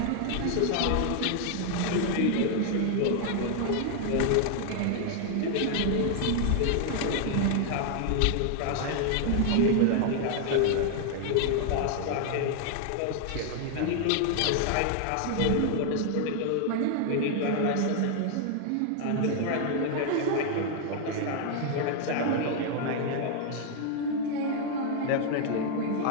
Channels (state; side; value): different; both; correlation 0.00